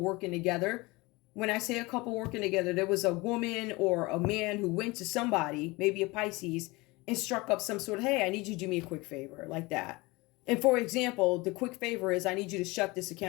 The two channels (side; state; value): right; quieter; 23.4 dB